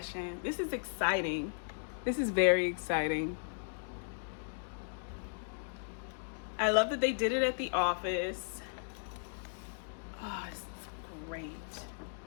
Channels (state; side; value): silent; right; digital silence